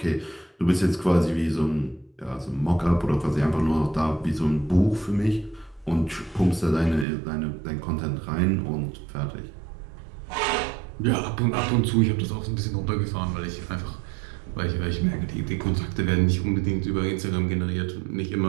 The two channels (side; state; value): left; drops out; at 7.1 s